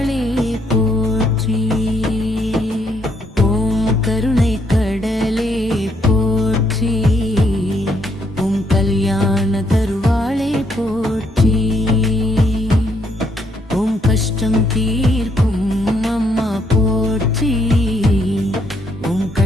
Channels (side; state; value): both; normal; correlation 0.73